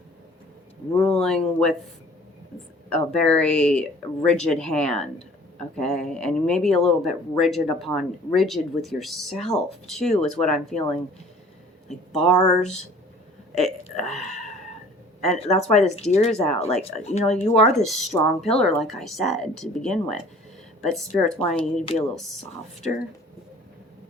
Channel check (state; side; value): normal; both; correlation 0.50